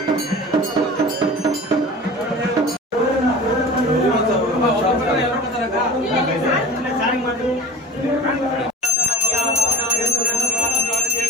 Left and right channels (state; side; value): normal; both; correlation 0.36